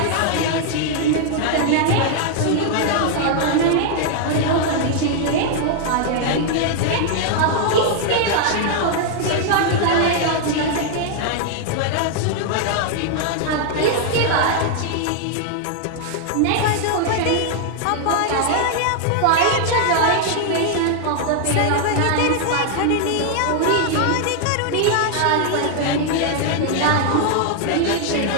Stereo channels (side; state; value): both; different; correlation 0.00